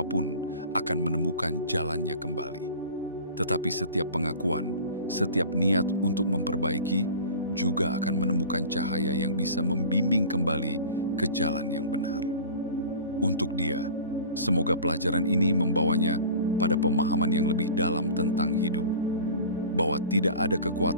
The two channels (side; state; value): both; inverted; correlation -0.40